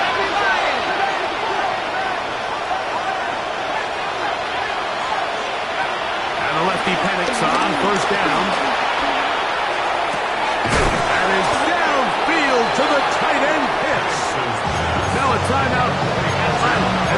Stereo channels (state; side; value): identical; both; correlation 1.00